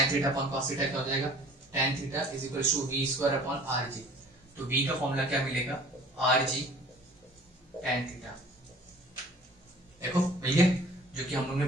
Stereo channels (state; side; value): normal; both; correlation 0.49